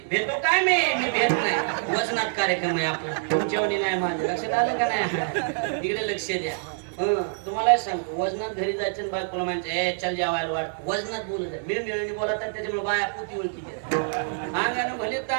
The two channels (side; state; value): left; silent; digital silence